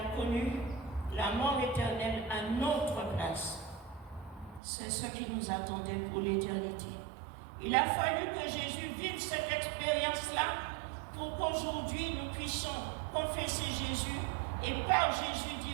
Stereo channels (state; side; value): drops out; left; at 4.6 s